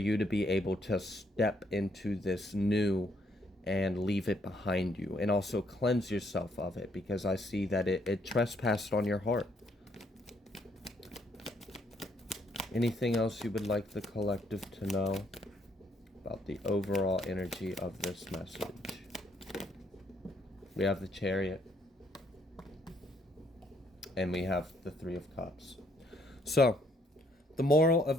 to be able to step into this new and leave it behind you, and also cleanse yourself of it, because I see that it trespassed on your heart. Anything else you would like the collective to know about the overall energy of this message? We have the Chariot. And we have the Three of Cups. So, the moral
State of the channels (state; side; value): normal; both; correlation 0.70